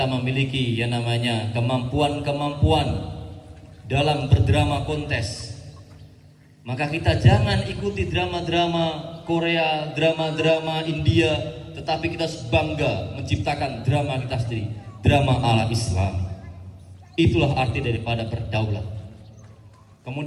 memiliki yang namanya kemampuan-kemampuan dalam berdrama kontes. Maka kita jangan ikuti drama-drama Korea, drama-drama India, tetapi kita harus bangga menciptakan drama kita sendiri, drama ala Islam. Itulah arti daripada berdaulat.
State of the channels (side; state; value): both; identical; correlation 1.00